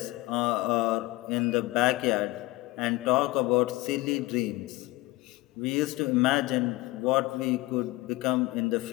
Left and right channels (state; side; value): quieter; right; 20.6 dB